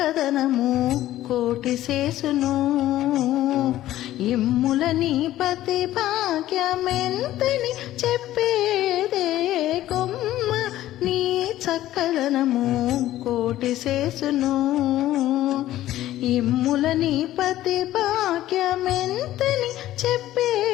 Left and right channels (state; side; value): quieter; right; 14.2 dB